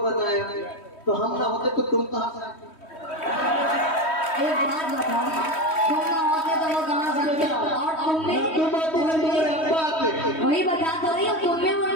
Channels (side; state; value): right; late; 3.1 ms